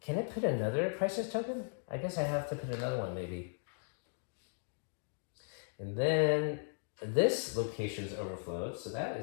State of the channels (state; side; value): silent; right; digital silence